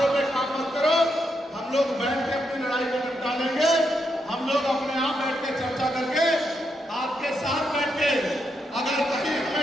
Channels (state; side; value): normal; both; correlation 0.81